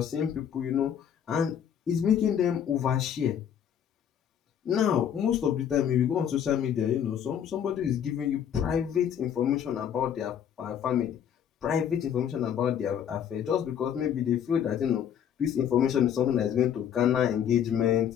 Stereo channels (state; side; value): quieter; right; 9.0 dB